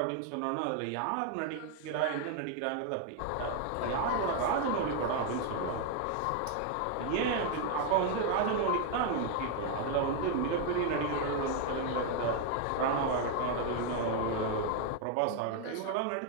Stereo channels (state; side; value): different; both; correlation 0.00